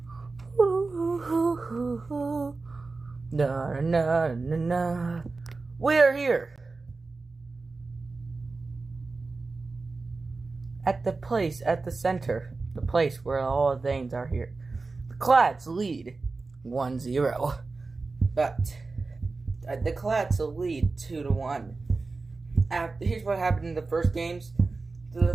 here at the place at the center, the place where all the things are here. The Clads lead 1-0, but the Clads will lead 2-1. Here's what happened in the first games.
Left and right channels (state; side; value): quieter; left; 3.8 dB